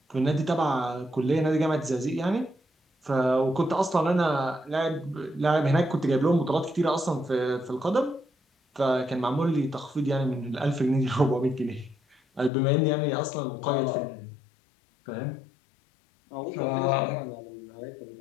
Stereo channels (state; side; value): drops out; right; at 12.5 s